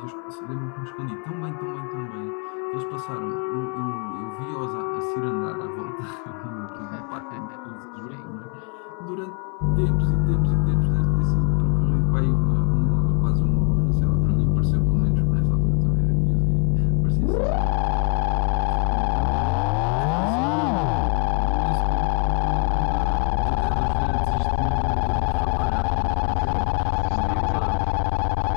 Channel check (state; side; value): quieter; right; 38.4 dB